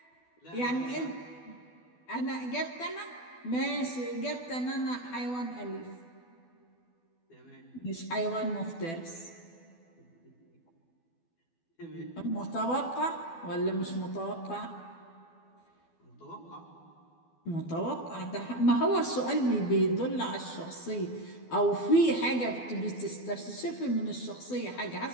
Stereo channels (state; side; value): late; right; 12 ms